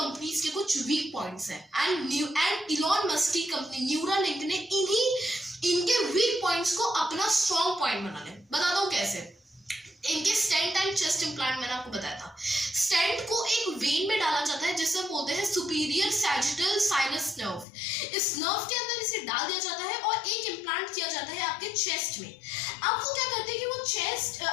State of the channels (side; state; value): right; drops out; at 17.7 s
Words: के कुछ वीक पॉइंट्स हैं, एंड इलॉन मस्क की कंपनी न्यूरालिंक ने इनके वीक पॉइंट्स को अपना स्ट्रॉन्ग पॉइंट बना लिया। बता दो कैसे। इनके स्टेंट एंड चेस्ट इम्प्लांट मैंने आपको बताया था। स्टेंट को एक वेन में डाला जाता है जिसे बोलते हैं सुपीरियर सैजिटल साइनस नर्व। इस नर्व के अंदर इसे डाल दिया जाता है और एक इम्प्लांट किया जाता है आपके चेस्ट में। अब वो क्या करते हैं